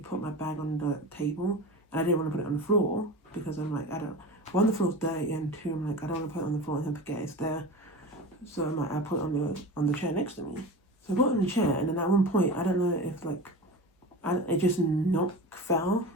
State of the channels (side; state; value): both; normal; correlation 0.30